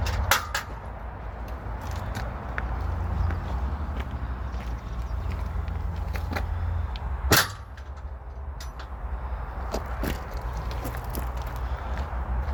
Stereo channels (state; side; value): identical; both; correlation 1.00